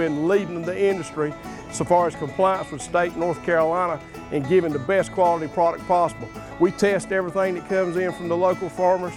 leading the industry so far as compliance with state North Carolina and giving the best quality product possible. We test everything that comes in from the local farmers.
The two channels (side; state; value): both; identical; correlation 1.00